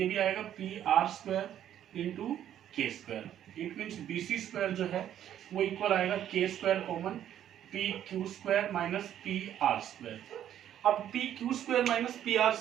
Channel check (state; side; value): quieter; left; 10.8 dB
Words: भी आएगा P R square into K square, it means B C square जो है वो इक्वल आएगा K square common P Q square minus P R square. अब P Q square minus P R